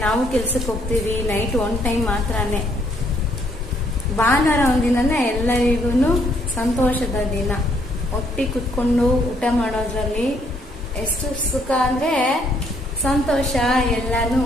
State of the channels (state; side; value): normal; both; correlation 0.69